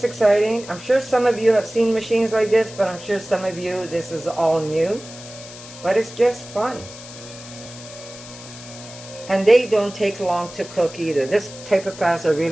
exciting? I'm sure some of you have seen machines like this, but I'm sure some of you, this is all new. But it's just fun. And they don't take long to cook either. This type of pasta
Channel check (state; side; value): noise; left; hiss, 16 dB below the sound